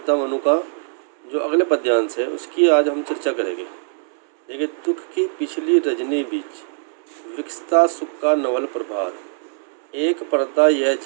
मनु का जो अगले पद्यांश है उसकी आज हम चर्चा करेंगे। देखिए, दुख की पिछली रजनी बीच विकसता सुख का नवल प्रभात, एक पर्दा यह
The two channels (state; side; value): silent; left; 65 dB below the other